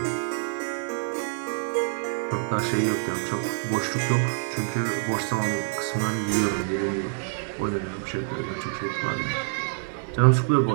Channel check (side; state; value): left; silent; 61 dB below the other